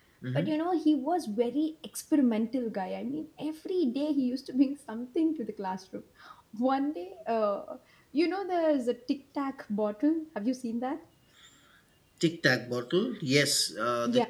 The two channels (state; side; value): identical; both; correlation 1.00